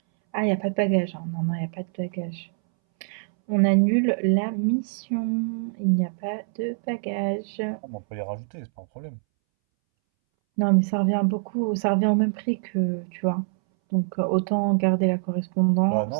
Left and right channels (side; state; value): left; silent; 62 dB below the other